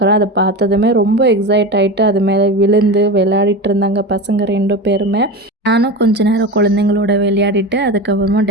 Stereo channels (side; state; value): both; normal; correlation 0.25